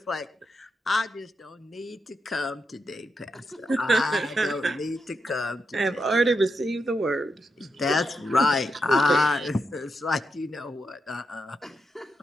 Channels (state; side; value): normal; both; correlation 0.84